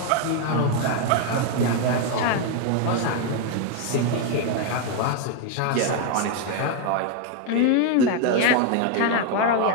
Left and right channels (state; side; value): different; both; correlation 0.01